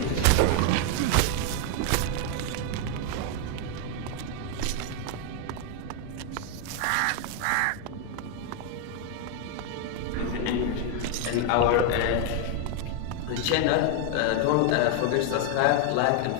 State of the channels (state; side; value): different; both; correlation 0.00